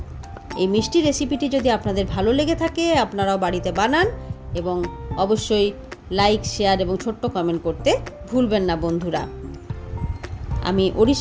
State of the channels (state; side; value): identical; both; correlation 1.00